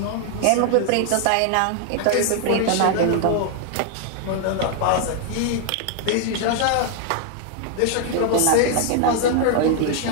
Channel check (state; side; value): different; both; correlation 0.00